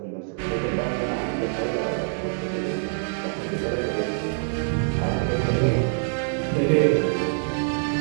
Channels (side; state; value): left; silent; 62 dB below the other